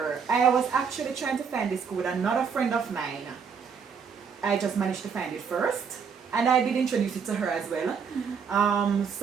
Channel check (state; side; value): quieter; left; 6.3 dB